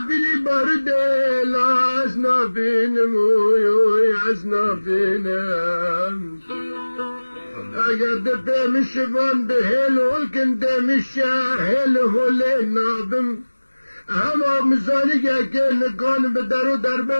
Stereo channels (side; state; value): both; inverted; correlation -1.00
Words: بلي برد لازنا بينم ويعزنا بينم أقد بهم شبان بهل والكن دم الشاهل هو لنابم هما مزاني كان كان بدرو